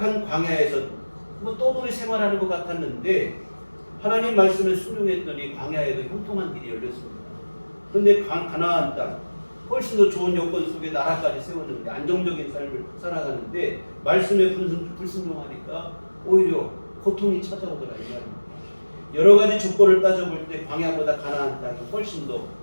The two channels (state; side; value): inverted; both; correlation -1.00